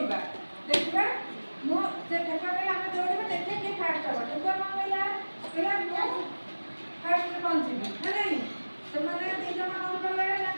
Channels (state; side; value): inverted; both; correlation -1.00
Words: देखा मुझे ठेकुआ कहला आम दौड़ा देखिए किए फास्ट हम ठेकुआ कौन कहला कहला फास्ट पहुँची ना नहीं से मैंने दीज कौन कले ना